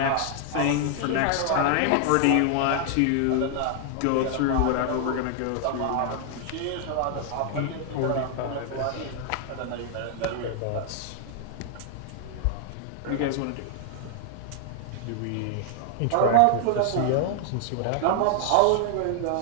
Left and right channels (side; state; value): both; different; correlation 0.00